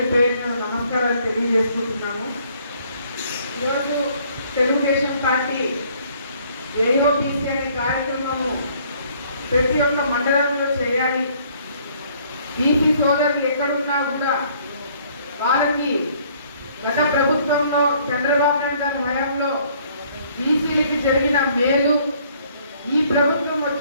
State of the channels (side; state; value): both; inverted; correlation -0.61